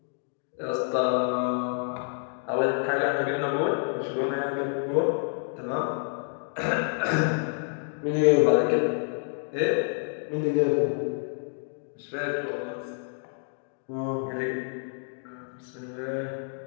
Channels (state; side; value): silent; right; 56 dB below the other